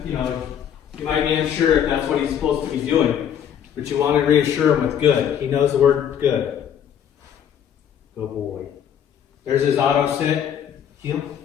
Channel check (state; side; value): quieter; right; 9.0 dB